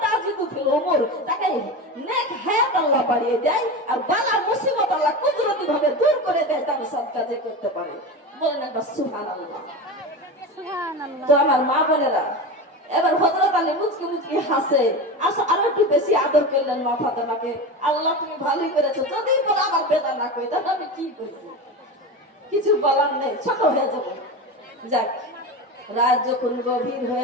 তাজিদু ফিল উমুর, তাকে নেক হায়াত আল্লাহ বাড়িয়ে দেয়, আর বালা মুসিবত আল্লাহ কুদরতি ভাবে দূর করে দেয়, তার সাদকা যে করতে পারে। বলেন একবার সুবহানাল্লাহ। তো আমার মা বোনেরা, এবার হযরত আলী মুচকি মুচকি হাসে, আসো আরো একটু বেশি আদর করলেন মা ফাতেমাকে। আল্লাহ তুমি ভালোই করেছো, যদি বলে আমার বেদনা কই, তাহলে আমি কি করব, কিছু বলার নেই, ছোট হয়ে যাবো। যাক, রাত যখন গভীর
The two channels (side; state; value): both; normal; correlation 0.25